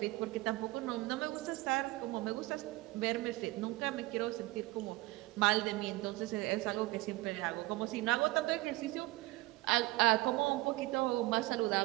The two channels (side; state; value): left; quieter; 20.3 dB